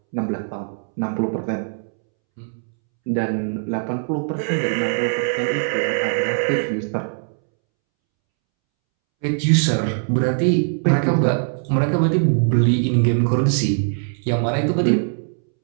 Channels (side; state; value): left; silent; 65 dB below the other